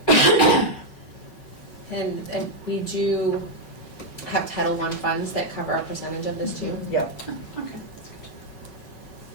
And we do have Title I funds that cover a percentage of this too. yep. Okay, that's good.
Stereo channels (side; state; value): right; late; 5.3 ms